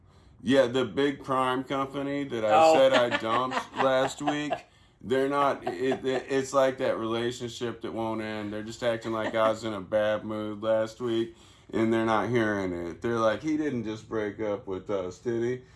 Yeah, the big crime company that I Oh. said I dumped last week. They're not. It's like that relationship that won't end. They're just acting like I was in a bad mood last week, and they're not hearing it. They're like, he didn't just break up with us, did he?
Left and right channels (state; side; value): identical; both; correlation 1.00